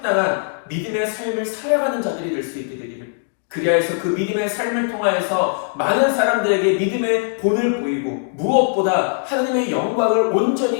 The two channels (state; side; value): silent; right; digital silence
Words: 믿음의 삶을 살아가는 자들이 될 수 있게 되기를, 그리하여 그 믿음의 삶을 통하여서 많은 사람들에게 믿음의 본을 보이고 무엇보다 하나님의 영광을